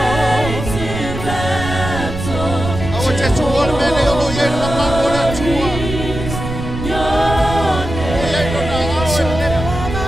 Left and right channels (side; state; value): right; noise; rumble, 6 dB below the sound